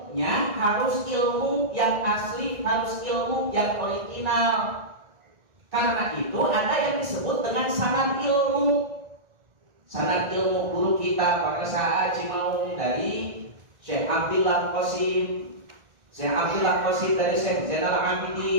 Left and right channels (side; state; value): left; late; 1.6 ms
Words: harus ilmu yang asli, harus ilmu yang original. Karena itu ada yang disebut dengan sanad ilmu. Sanad ilmu guru kita pada saat Cimaung dari Syekh Abdullah Qasim, Syekh Abdullah Qasim dari Syekh Zainal